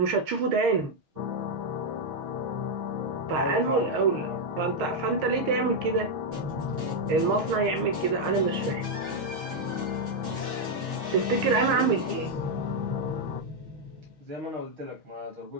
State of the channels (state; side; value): late; left; 6.3 ms